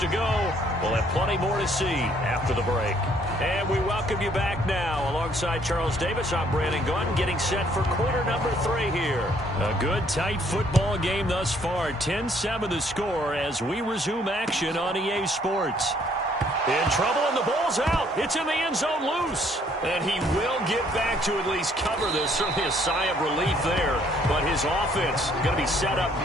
go. We'll have plenty more to see after the break. And we welcome you back now. Alongside Charles Davis, I'm Brandon Gunn, getting set for quarter number 3 here. A good, tight football game thus far. 10-7 the score as we resume action on EA Sports. In trouble, and the ball's out. It's in the end zone loose. And he will get back to at least cover this. Certainly a sigh of relief there. But his offense going to be set up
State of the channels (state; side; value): normal; both; correlation 0.64